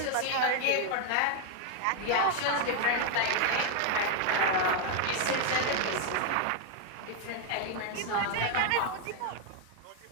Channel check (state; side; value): different; both; correlation 0.00